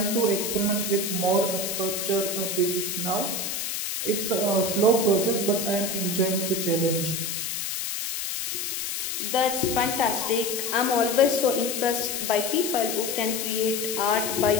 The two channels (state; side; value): noise; left; hiss, 3 dB below the sound